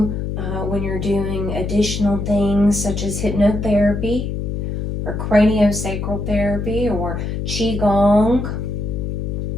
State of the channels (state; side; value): noise; left; hum, 3 dB below the sound